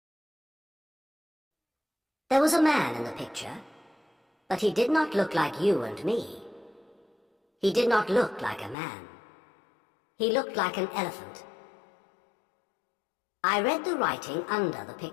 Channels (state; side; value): drops out; right; at 8.8 s